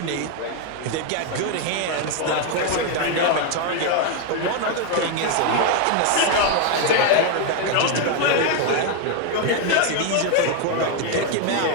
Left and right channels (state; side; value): different; both; correlation 0.01